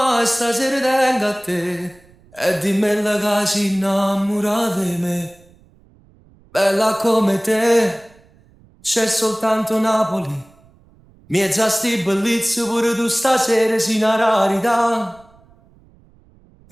stasera tengo a te e dimmi la che si innamora di me. Bella come te, c'è soltanto Napoli. Miezza sti bellezze pure tu stasera sei una rarità.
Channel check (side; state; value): right; noise; rumble, 29 dB below the sound